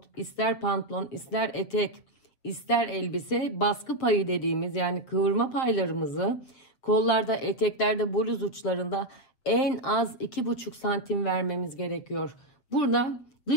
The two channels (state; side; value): late; right; 7.7 ms